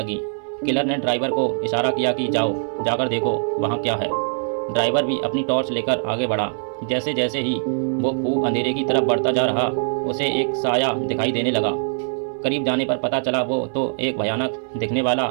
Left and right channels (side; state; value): left; silent; 60 dB below the other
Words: किलर ने ड्राइवर को इशारा किया कि जाओ, जाकर देखो वहाँ क्या है। ड्राइवर भी अपनी टॉर्च लेकर आगे बढ़ा। जैसे जैसे ही वो खूब अंधेरे की तरफ बढ़ता जा रहा, उसे एक साया दिखाई देने लगा। करीब जाने पर पता चला वो तो एक भयानक दिखने वाला